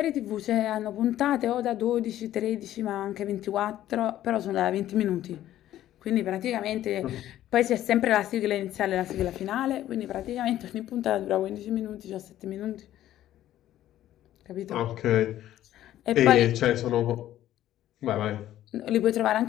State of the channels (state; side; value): quieter; right; 12.9 dB